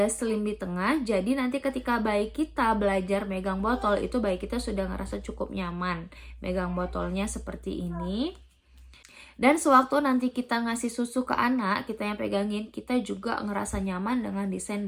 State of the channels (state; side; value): identical; both; correlation 1.00